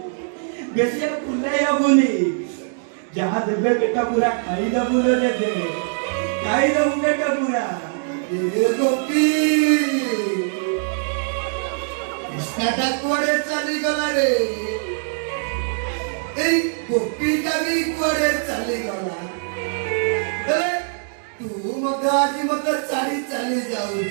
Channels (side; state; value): left; silent; digital silence